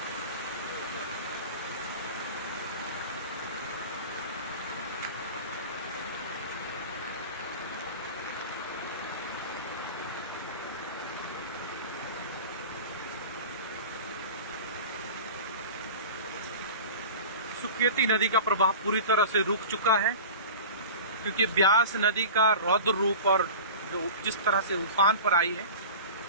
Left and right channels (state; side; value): inverted; both; correlation -0.35